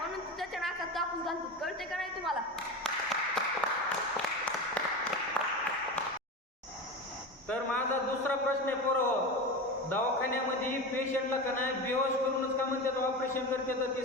तू त्याच्या नाकात कापूस घालतो. कळते का नाही तुम्हाला? तर माझा दुसरा प्रश्न आहे पोरं, दवाखान्यामध्ये पेशंटला का नाही बेहोश करूनच का म्हणतात ऑपरेशन करते, तर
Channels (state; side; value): normal; both; correlation 0.25